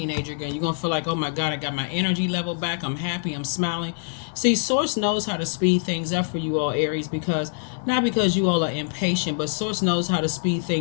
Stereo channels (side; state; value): right; silent; 60 dB below the other